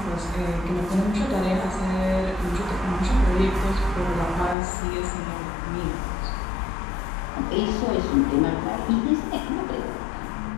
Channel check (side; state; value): right; drops out; at 4.5 s